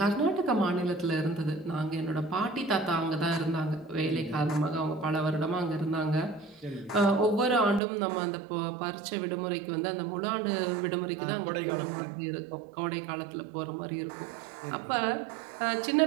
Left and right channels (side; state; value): left; drops out; at 7.8 s